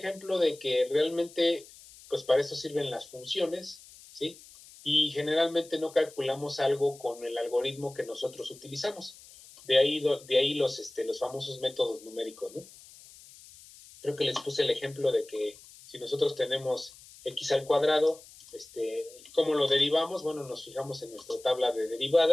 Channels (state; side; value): noise; left; hiss, 21 dB below the sound